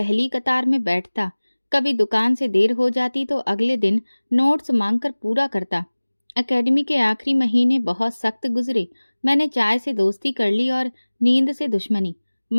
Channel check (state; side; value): inverted; both; correlation -1.00